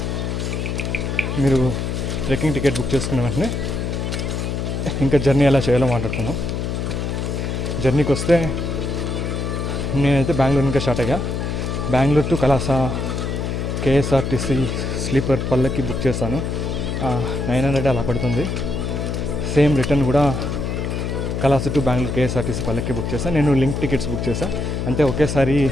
మీరు ట్రెక్కింగ్ టికెట్ బుక్ చేసుకున్న వెంటనే ఇంకా జర్నీ ఎలా చేయాలో మాట్లాడుకుందాం. జర్నీకి వస్తే నేనైతే బెంగళూరు ఇంకా స్టార్ట్ అయ్యా. బెంగళూరు టు కలాస కేఎస్ఆర్టీసీ స్లీపర్ పల్లకి బుక్ చేశాను. 900 అలా పడుతుంది. సేమ్ రిటర్న్ కూడా కలాస టు బెంగళూరు కేఎస్ఆర్టీసీ పల్లకి బుక్ చేశాను. నేను లింక్ టికెట్స్ బుక్ చేశాను. అంటే ఒకేసారి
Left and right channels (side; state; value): left; noise; hum, 2 dB below the sound